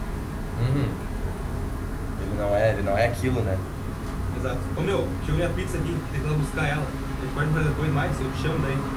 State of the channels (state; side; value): identical; both; correlation 1.00